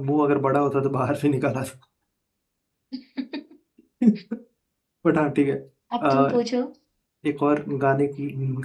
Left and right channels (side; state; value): both; identical; correlation 1.00